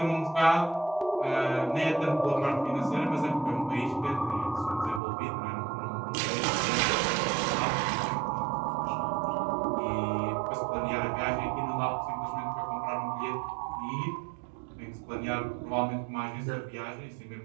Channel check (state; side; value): drops out; left; at 5.0 s